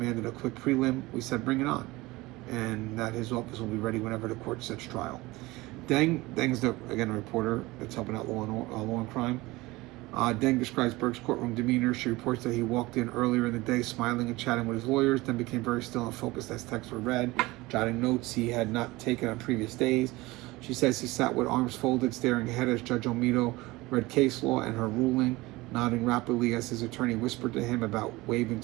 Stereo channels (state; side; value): quieter; left; 20.8 dB